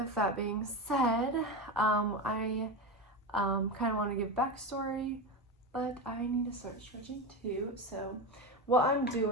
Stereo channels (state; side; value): normal; both; correlation 0.19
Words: that being said, I kind of want to give backstory, but I need to start stretching too. So what I'm